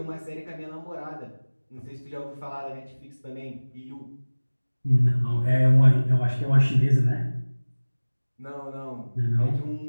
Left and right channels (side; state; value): both; inverted; correlation -1.00